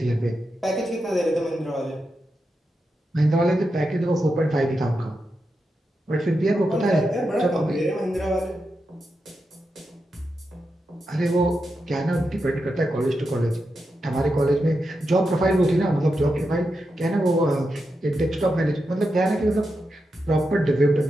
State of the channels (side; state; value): both; normal; correlation 0.87